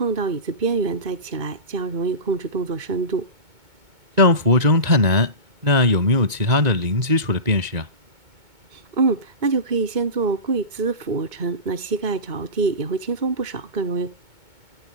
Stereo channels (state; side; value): late; left; 2.2 ms